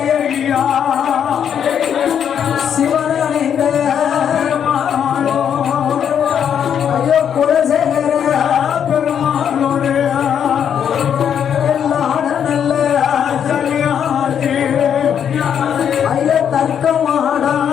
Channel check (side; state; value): right; quieter; 8.5 dB